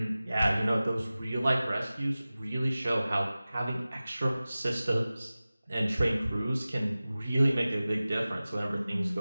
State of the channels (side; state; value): both; inverted; correlation -0.97